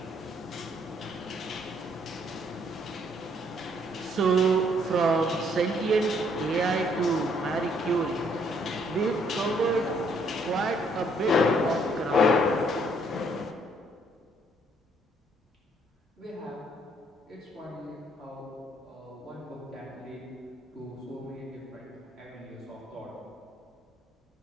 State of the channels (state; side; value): normal; both; correlation 0.67